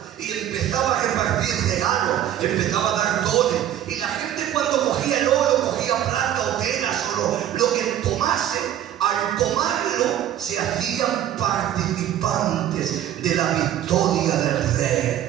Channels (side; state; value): left; quieter; 11.4 dB